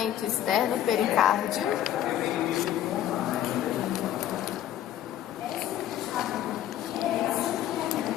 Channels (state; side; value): quieter; right; 11.6 dB